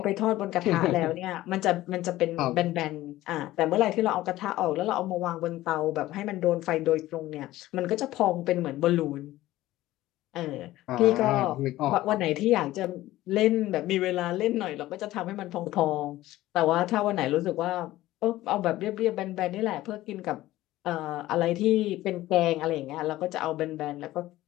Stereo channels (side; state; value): right; quieter; 16.0 dB